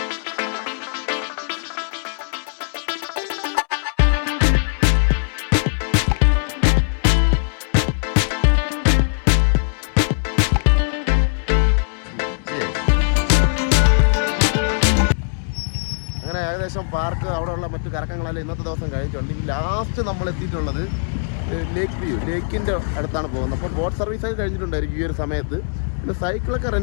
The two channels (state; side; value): silent; right; 65 dB below the other